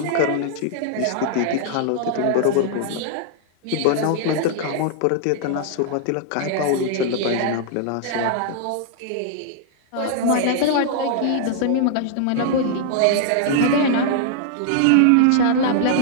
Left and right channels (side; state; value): both; different; correlation -0.01